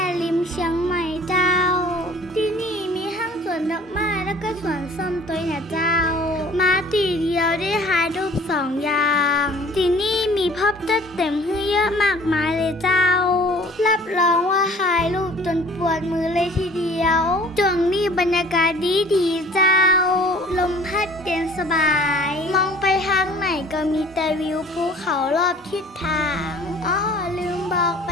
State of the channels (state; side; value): normal; both; correlation 0.50